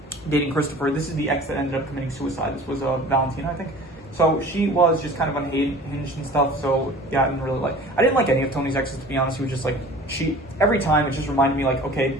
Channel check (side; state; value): both; normal; correlation 0.43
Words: dating Christopher. This is the ex that ended up committing suicide. This was Valentina, I think. So she was just kind of unhinged and stuff, so yeah, I didn't like any of Tony's exes, to be honest. He was just like, every time it just reminded me like, okay,